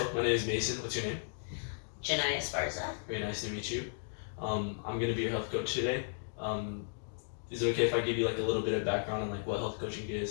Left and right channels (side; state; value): right; silent; digital silence